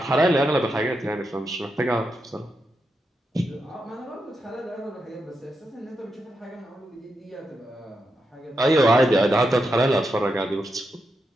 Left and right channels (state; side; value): normal; both; correlation 0.85